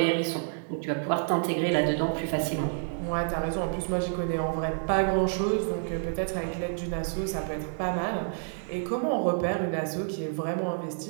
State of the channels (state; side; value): silent; left; digital silence